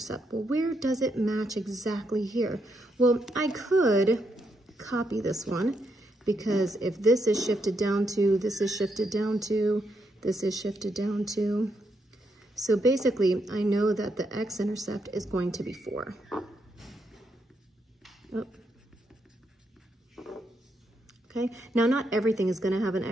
well, where does it match exactly here? Well, I could copy this one because if this is shifted down to, this is shifted down to, this is shifted down to, so basically, I know that the x-intercept is going to be 4. Oh. Okay, now not everything is going to have an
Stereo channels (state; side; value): normal; both; correlation 0.79